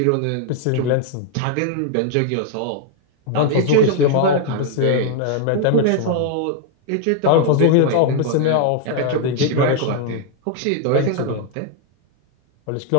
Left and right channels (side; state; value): both; different; correlation 0.00